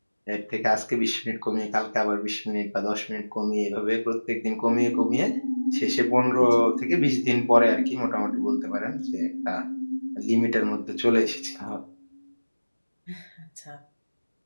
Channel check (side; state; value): both; inverted; correlation -1.00